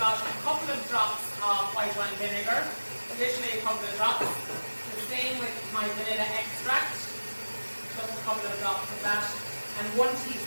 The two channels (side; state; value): both; inverted; correlation -1.00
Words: a couple of drops of white wine vinegar, additionally a couple of drops. The same with my vanilla extract, just a couple of drops of that, and 1